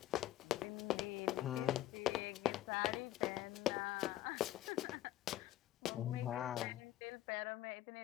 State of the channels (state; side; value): quieter; right; 13.8 dB